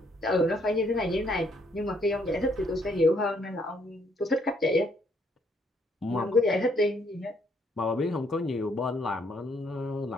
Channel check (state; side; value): normal; both; correlation 0.69